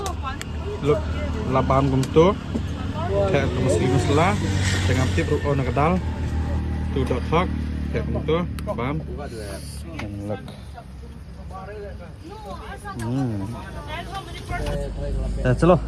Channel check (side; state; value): both; identical; correlation 1.00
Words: Look, laban gumto. Kayak muslim lah. Dengan tip ruko nak kedal. Tu dot talk. Kayak gumto. Bam. And look. Chalo,